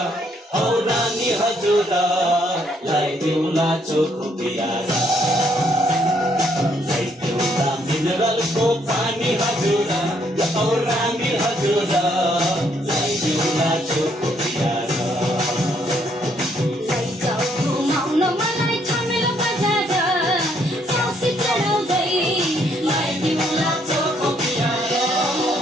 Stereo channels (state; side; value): normal; both; correlation 0.70